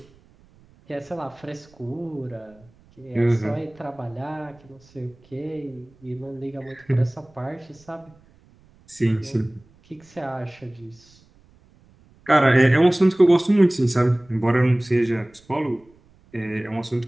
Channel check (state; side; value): noise; right; rumble, 29 dB below the sound